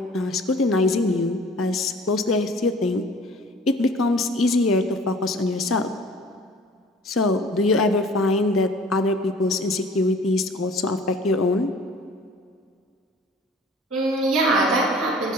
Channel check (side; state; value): both; normal; correlation 0.48